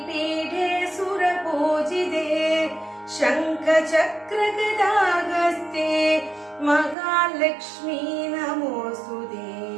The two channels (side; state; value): left; drops out; at 7.0 s